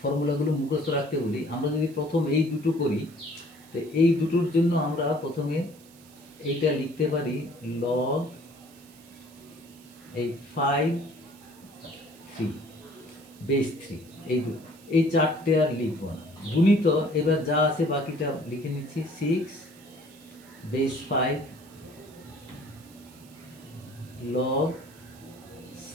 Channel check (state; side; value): noise; right; hiss, 24 dB below the sound